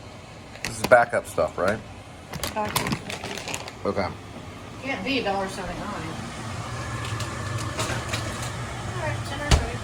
backup stuff, right? $1.79. Okay. Can't be $1.79. All right, $10.30.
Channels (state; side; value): identical; both; correlation 1.00